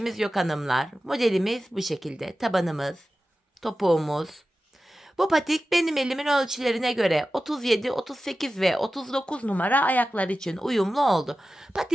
yok hanımlar. Modelimiz bu şekilde. Tabanımız, topuğumuz. Bu patik benim elimin ölçülerine göre 37, 38 ve 39 numara ayaklar için uyumlu oldu.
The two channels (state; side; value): normal; both; correlation 0.94